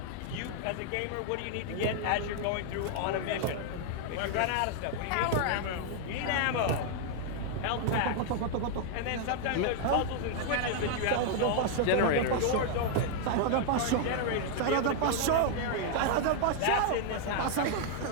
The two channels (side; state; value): both; different; correlation 0.00